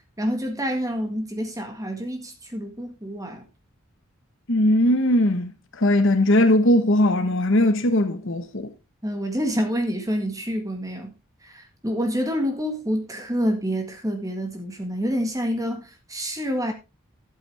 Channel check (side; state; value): both; normal; correlation 0.62